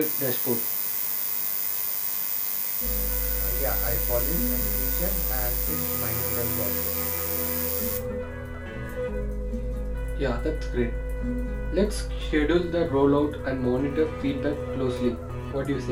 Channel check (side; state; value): both; identical; correlation 1.00